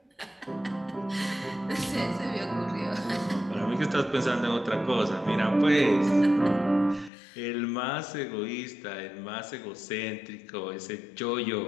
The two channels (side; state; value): right; drops out; at 7.1 s